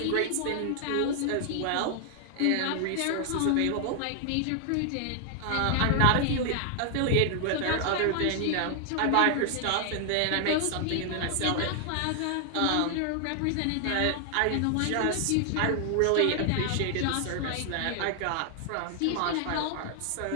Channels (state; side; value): different; both; correlation 0.00